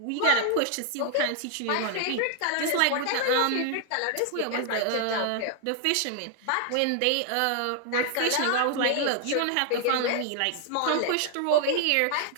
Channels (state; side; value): different; both; correlation 0.00